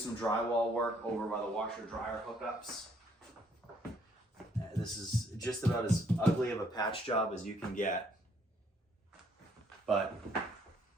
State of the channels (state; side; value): normal; both; correlation 0.67